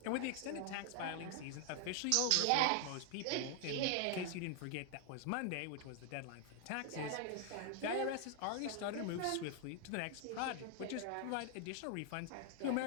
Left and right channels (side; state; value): both; different; correlation 0.00